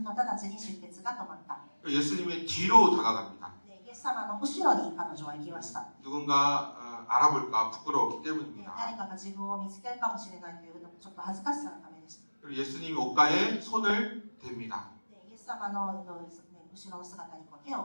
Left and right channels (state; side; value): inverted; both; correlation -1.00